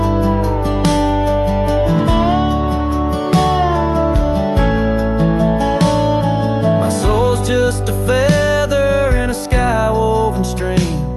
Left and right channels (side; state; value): both; identical; correlation 1.00